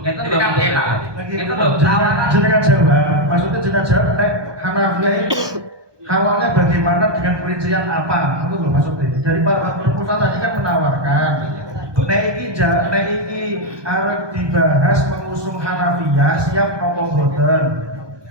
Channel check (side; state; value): left; late; 1.2 ms